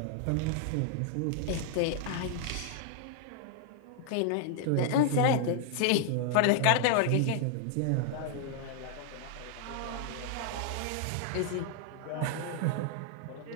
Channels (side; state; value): both; different; correlation 0.00